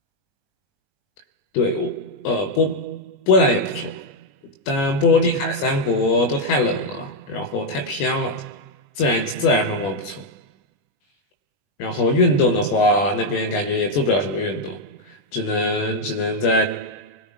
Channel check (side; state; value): right; late; 20 ms